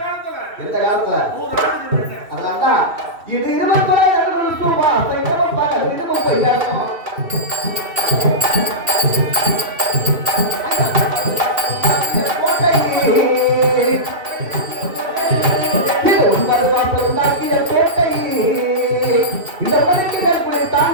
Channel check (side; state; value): left; late; 2.7 ms